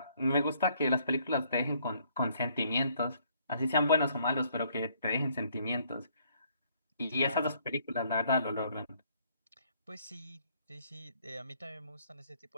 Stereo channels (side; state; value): both; inverted; correlation -0.65